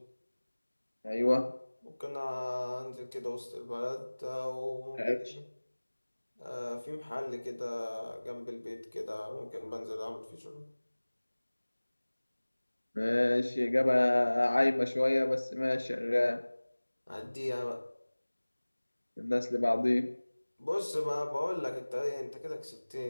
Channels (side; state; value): both; inverted; correlation -1.00